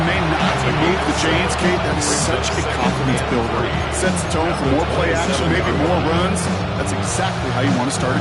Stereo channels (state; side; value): identical; both; correlation 1.00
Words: may not move the chains, Kate. That is such a confidence builder. Sets the tone for more play action, maybe more runs. That's exactly how you want to start a